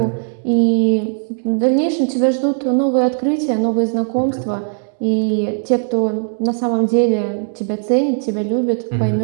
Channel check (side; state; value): left; silent; digital silence